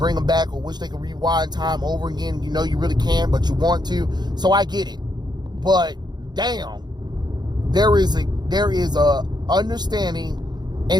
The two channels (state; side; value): late; left; 0.21 ms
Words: them back, or wish they could rewind time over again. You really can't, but you want to. So I get it. But damn, there is a understanding,